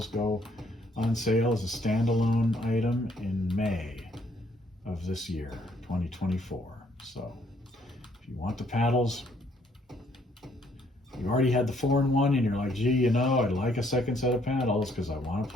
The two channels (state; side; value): normal; both; correlation 0.66